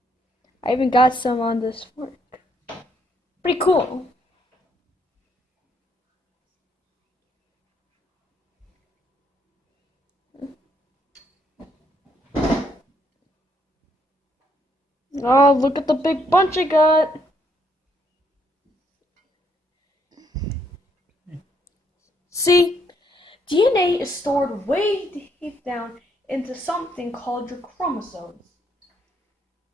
I even got some on this fork. Pretty cool. Oh, look at the big bunch I got. See, DNA is stored way deep down into something called your chromosomes.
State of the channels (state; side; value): normal; both; correlation 0.71